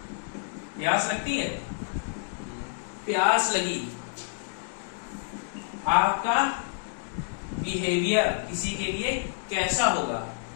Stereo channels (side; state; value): right; silent; 59 dB below the other